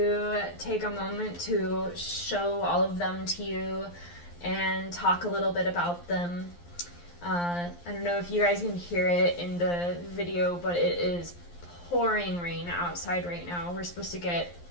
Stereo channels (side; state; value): right; late; 11 ms